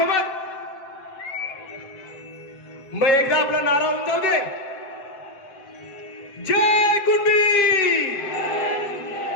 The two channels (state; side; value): late; right; 7.9 ms